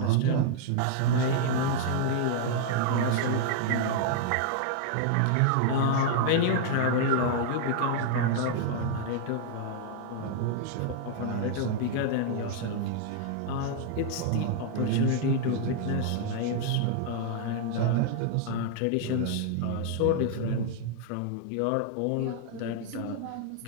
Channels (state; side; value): different; both; correlation 0.00